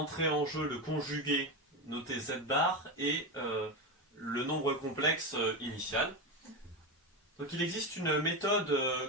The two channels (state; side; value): normal; both; correlation 0.16